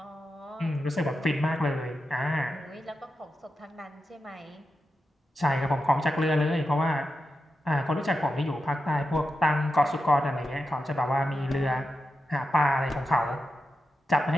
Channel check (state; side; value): normal; both; correlation 0.89